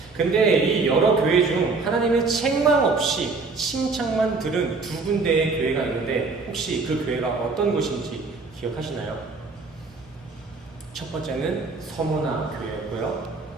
근데 이 여러 교회 중 하나님의 책망 없이 칭찬만 들은 두 군데의 교회가 있는데 혹시 그 교회가 어떤 곳인지 기억하시나요? 첫 번째는 서모나 교회였고요.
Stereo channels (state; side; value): quieter; left; 4.1 dB